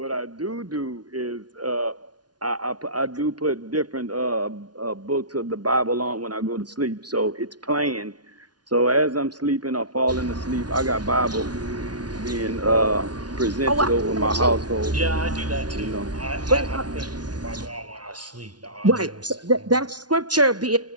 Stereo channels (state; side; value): late; left; 0.69 ms